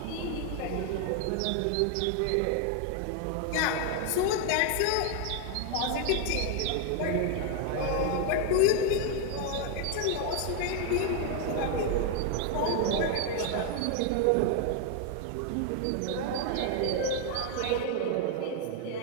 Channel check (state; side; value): different; both; correlation 0.01